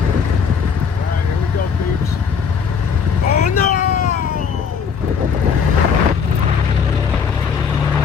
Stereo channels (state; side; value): quieter; right; 6.4 dB